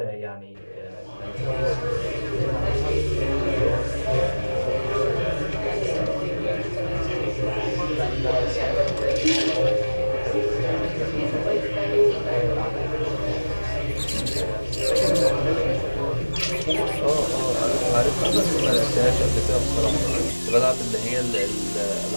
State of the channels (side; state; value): both; inverted; correlation -1.00